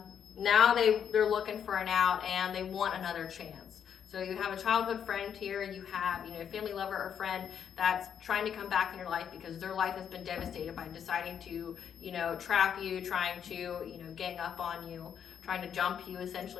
they're looking for an out, and they want another chance. So you have a childhood friend here, you have, you know, a family lover or friend that's trying to come back in your life because their life has been devastated by deciding to, you know, trap you, trying to, you know, gang up on you, trying to jump you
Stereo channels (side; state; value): right; quieter; 8.2 dB